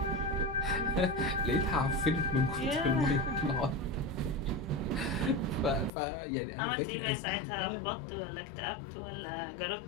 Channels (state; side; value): drops out; right; at 5.9 s